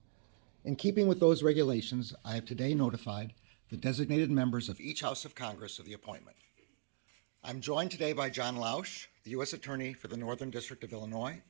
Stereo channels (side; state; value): left; silent; digital silence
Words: In keeping with those regulations, I have today notified the designated members of each House of Congress of the appointment. I'm joined today by John Lausch, the U.S. Attorney for the Northern District of Illinois,